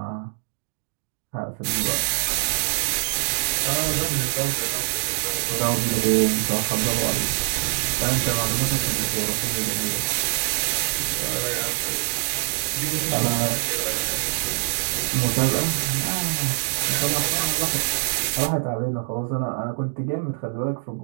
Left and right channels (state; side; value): silent; left; digital silence